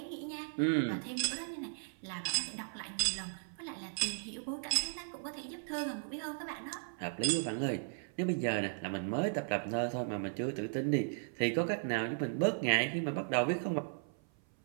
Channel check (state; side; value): silent; left; 54 dB below the other